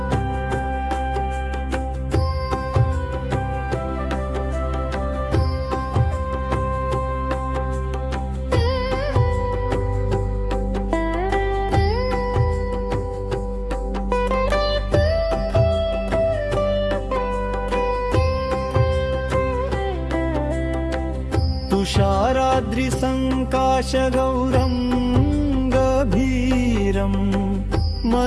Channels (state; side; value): identical; both; correlation 1.00